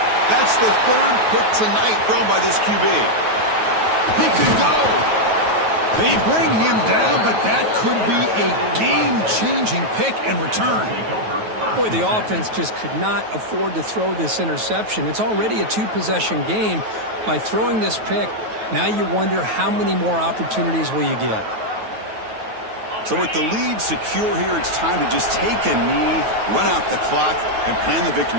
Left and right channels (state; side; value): late; left; 9.3 ms